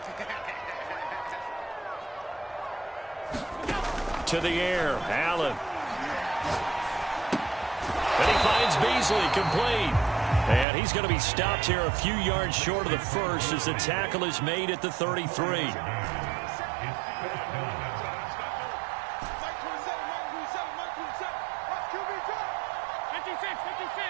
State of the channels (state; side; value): drops out; left; at 10.7 s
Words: To the air, Allen. And he finds Beasley complete. And he's going to be stopped here a few yards short of the first as the tackle is made at the 33.